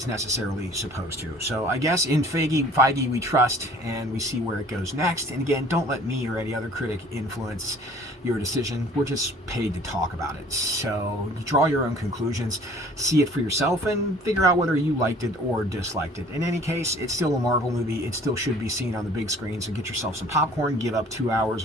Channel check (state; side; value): normal; both; correlation 0.51